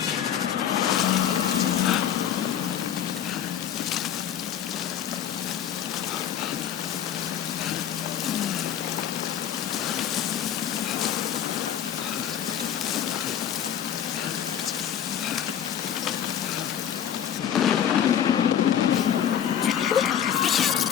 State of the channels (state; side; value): quieter; right; 9.6 dB